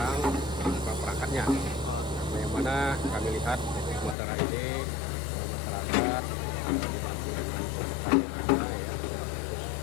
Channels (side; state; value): right; drops out; at 4.2 s